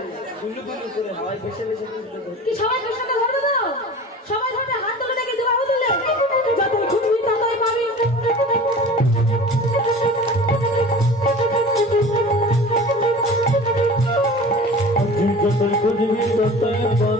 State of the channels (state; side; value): normal; both; correlation 0.39